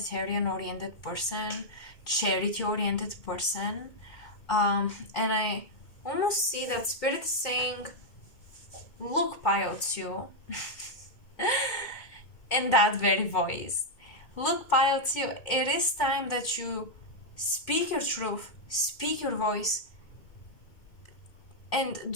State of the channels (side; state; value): right; late; 2.2 ms